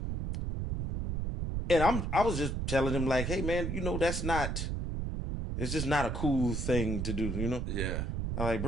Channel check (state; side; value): noise; right; rumble, 2 dB below the sound